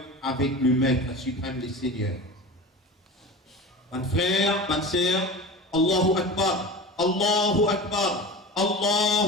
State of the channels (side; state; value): both; normal; correlation 0.31